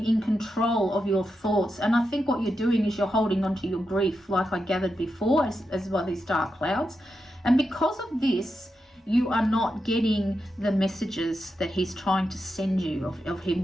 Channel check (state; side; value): normal; both; correlation 0.87